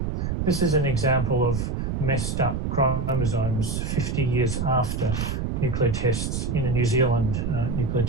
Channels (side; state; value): right; noise; rumble, 1 dB below the sound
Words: This is an example of messed up chromosomes 50 years after nuclear tests in a New Zealand nuclear